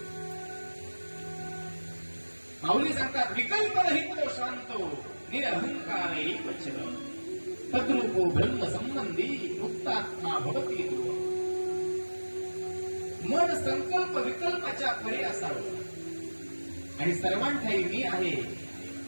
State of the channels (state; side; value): inverted; both; correlation -1.00